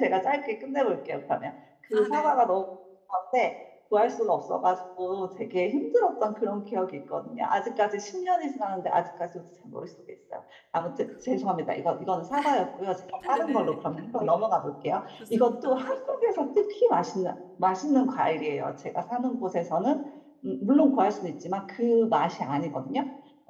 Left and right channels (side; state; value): both; identical; correlation 1.00